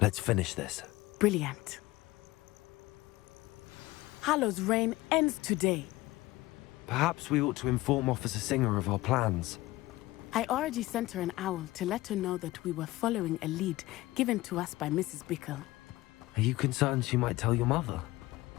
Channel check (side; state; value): right; quieter; 18.8 dB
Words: Let's finish this. Brilliant. Harlow's reign ends today. Perhaps we ought to inform Officer Singer of our plans. I already sent her an owl to let her know that we were following a lead given to us by Mrs. Bickle. Are you concerned she might tell your mother?